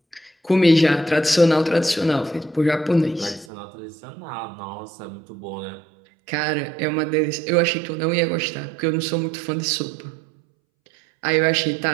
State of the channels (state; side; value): drops out; left; at 3.5 s